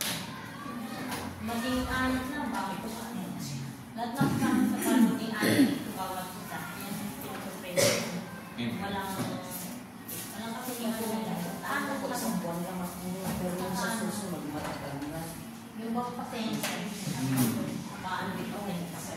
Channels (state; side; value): identical; both; correlation 1.00